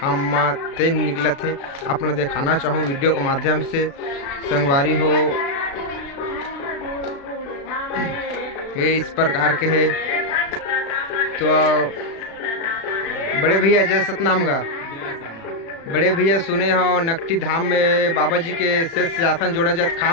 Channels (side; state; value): right; late; 36 ms